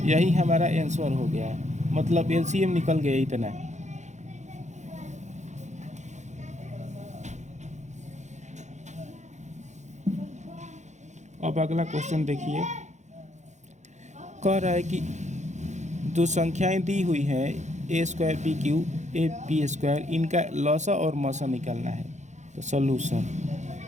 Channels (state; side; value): late; left; 0.34 ms